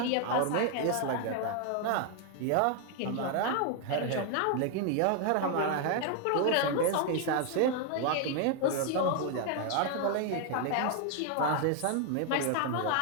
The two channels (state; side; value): different; both; correlation 0.00